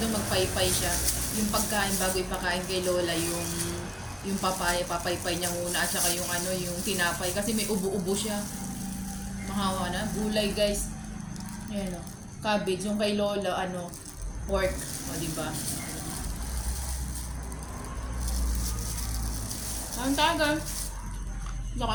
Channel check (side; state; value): both; identical; correlation 1.00